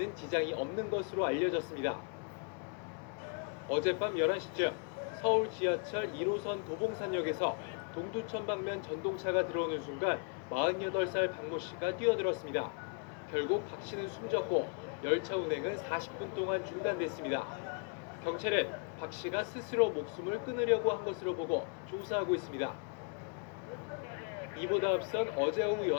지장이 없는 것으로 알려졌습니다. 어젯밤 11시쯤 서울 지하철 1호선 도봉산역에서 동두천 방면 전동차가 들어오는 순간 48살 박모 씨가 뛰어들었습니다. 결국 박 씨는 숨졌고 열차 운행은 40분 동안 중단됐습니다. 경찰은 박 씨가 스스로 목숨을 끊으려고 한 것으로 보고 조사하고 있습니다. 이보다 앞선 어제 오후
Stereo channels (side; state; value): right; quieter; 39.5 dB